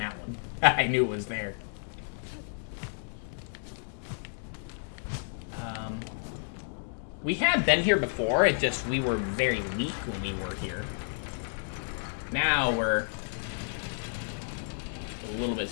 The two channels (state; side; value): silent; right; digital silence